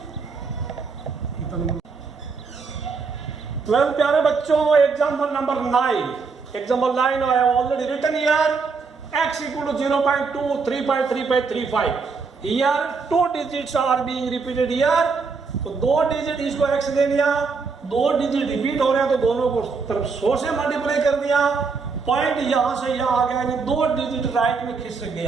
12 प्यारे बच्चों, example number 9, example 9 I have already written here x equal to 0.2 3.3535। Here 2 digits are being repeated here, तो 2 डिजिट इसको x ले लिया, 2 डिजिट रिपीट हो रहे हैं तो दोनों को तरफ 100 से मल्टीप्लाई कर दिया। पॉइंट यहां से यहां आ गया, यानी 2 डिजिट राइट में खिसक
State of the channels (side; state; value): left; quieter; 4.9 dB